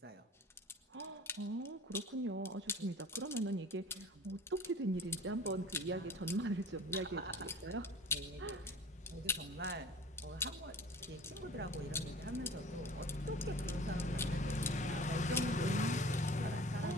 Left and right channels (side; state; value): both; normal; correlation 0.43